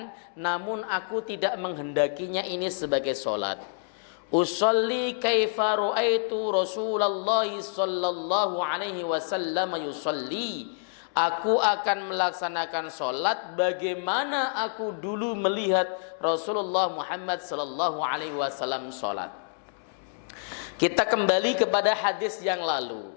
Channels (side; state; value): right; silent; digital silence